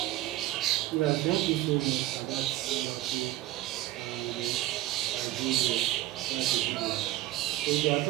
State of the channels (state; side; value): quieter; left; 15.6 dB